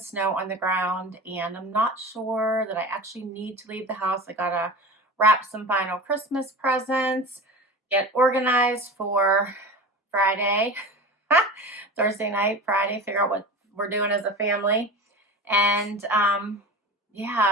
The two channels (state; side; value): normal; both; correlation 0.33